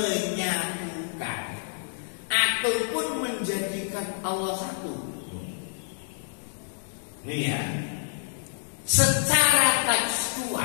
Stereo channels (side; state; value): right; silent; digital silence